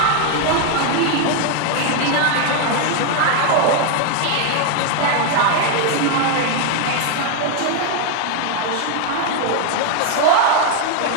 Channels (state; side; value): different; both; correlation 0.01